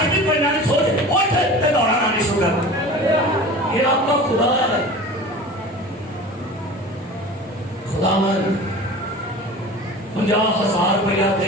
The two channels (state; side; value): normal; both; correlation 0.37